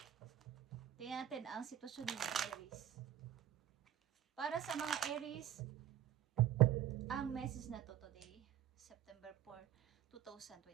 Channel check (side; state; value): left; quieter; 11.3 dB